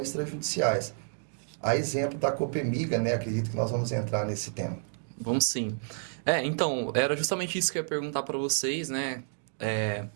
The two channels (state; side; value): silent; left; digital silence